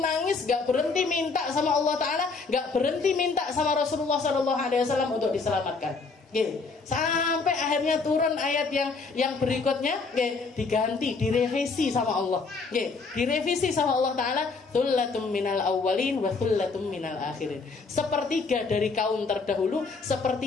nggak berhenti minta sama Allah Ta'ala, nggak berhenti minta sama Rasulullah Shallallahu Alaihi Wasallam untuk diselamatkan. Sampai akhirnya turun ayat yang berikutnya, diganti, direvisi sama Allah, direvisi sama Allah Ta'ala, thullatum minal awwalin wa thullatum minal akhirin, sepertiga dari kaum terdahulu,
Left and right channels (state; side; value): quieter; right; 4.3 dB